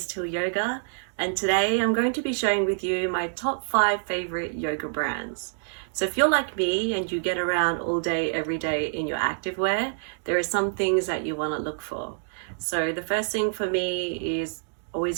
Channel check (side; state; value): left; silent; digital silence